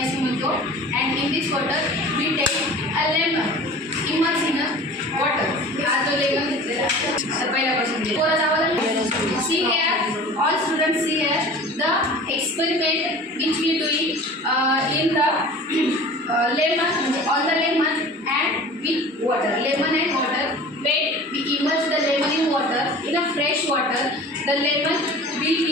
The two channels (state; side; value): normal; both; correlation 0.41